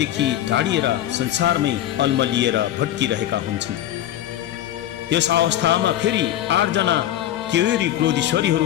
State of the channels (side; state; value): right; quieter; 12.5 dB